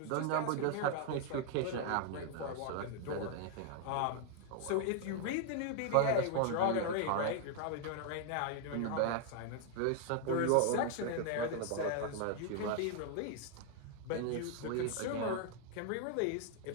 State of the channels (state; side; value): different; both; correlation 0.00